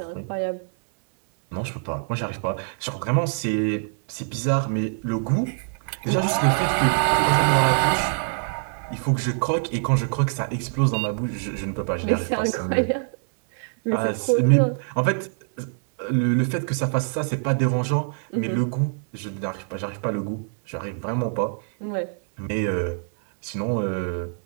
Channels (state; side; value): silent; left; 60 dB below the other